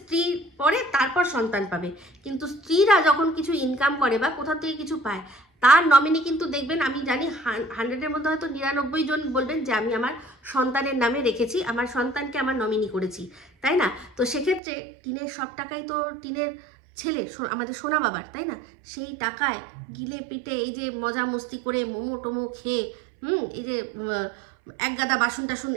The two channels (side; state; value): left; drops out; at 14.6 s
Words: পরে তারপর সন্তান পাবে। কিন্তু স্ত্রীরা যখন কিছু ইনকাম করে বা কোথাও থেকে কিছু পায়, তার নমিনি কিন্তু দেখবেন, আমি জানি 100-এর মধ্যে হয়তো 99 জন বলবেন যে আমি আমার সন্তানের নামে রেখেছি, আমার সন্তানকে আমার নমিনি করেছি, তাই না? তো সেক্ষেত্রে টিনের সব টাকাই তো টিনের ছেলে আমাদের সোনা বাবার, তাই না? সেই টাকায় গিলে পিটে এই যে মজা মস্তি করে মোমো টোমো খেয়ে এই যে এক গাদা বাসন টাসন